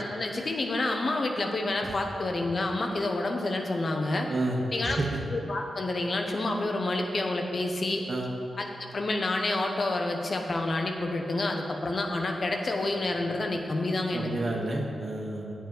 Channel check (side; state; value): both; normal; correlation 0.90